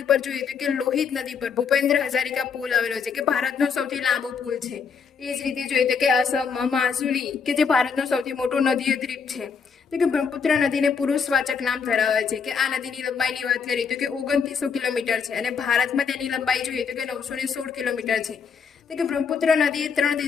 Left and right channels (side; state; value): right; quieter; 6.0 dB